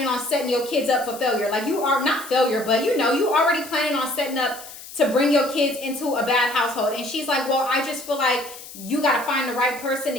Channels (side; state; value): left; noise; hiss, 15 dB below the sound